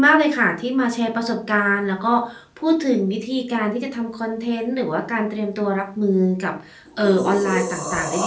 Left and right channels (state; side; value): identical; both; correlation 1.00